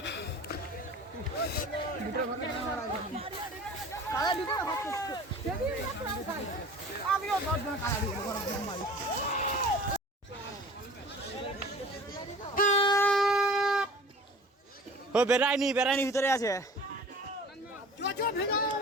ও বেড়ায়নি, বেড়ায়নি ভিতরে আছে।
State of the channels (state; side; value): normal; both; correlation 0.44